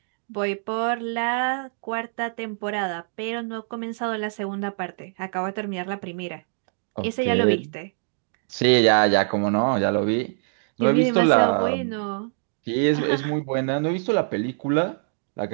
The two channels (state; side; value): silent; left; digital silence